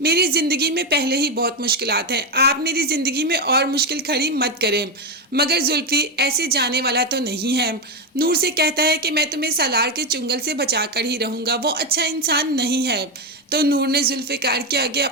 ज़िंदगी में पहले ही बहुत मुश्किलात हैं, आप मेरी ज़िंदगी में और मुश्किल खड़ी मत करें। मगर जुल्फी ऐसे जाने वाला तो नहीं है। नूर से कहता है कि मैं तुम्हें सालार के चुंगल से बचा कर ही रहूँगा, वो अच्छा इंसान नहीं है। तो नूर ने जुल्फिकार के आगे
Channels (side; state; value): both; normal; correlation 0.09